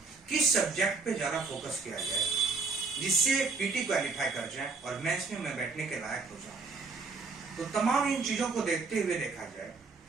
किस सब्जेक्ट पे ज्यादा फोकस किया जाए जिससे पीटी क्वालिफाई कर जाए और मेंस में मैं बैठने के लायक हो जाऊं। तो तमाम इन चीजों को देखते हुए देखा जाए,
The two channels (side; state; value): left; quieter; 4.2 dB